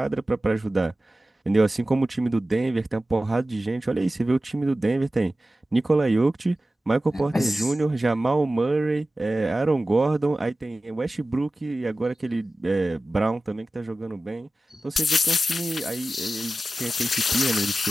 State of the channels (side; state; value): both; normal; correlation 0.95